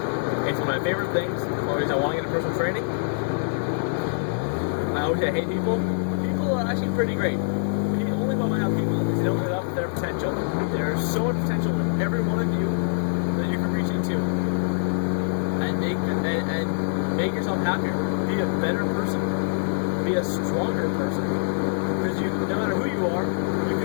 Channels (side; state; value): right; silent; 62 dB below the other